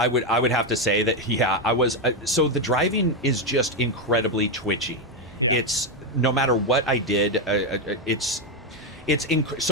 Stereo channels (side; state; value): both; normal; correlation 0.06